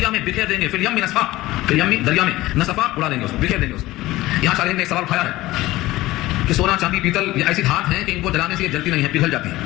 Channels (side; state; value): right; quieter; 17.7 dB